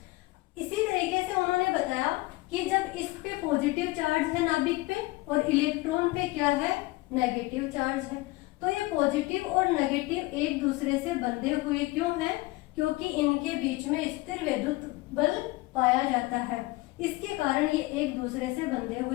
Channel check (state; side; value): quieter; right; 21.1 dB